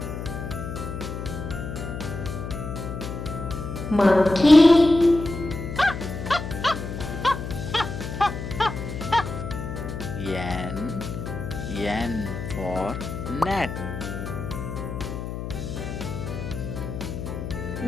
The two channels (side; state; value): left; noise; hum, 6 dB below the sound